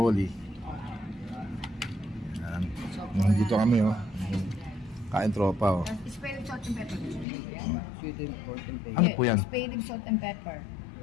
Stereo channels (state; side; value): drops out; right; at 7.2 s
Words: Yan. Dito kami oh. Kain tropa oh. Spare rib, salt and pepper. Sweet and pork and pay. Ano po yan? Spare rib, salt and pepper.